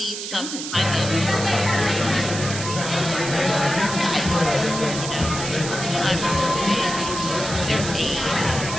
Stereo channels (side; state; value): right; noise; hiss, 6 dB below the sound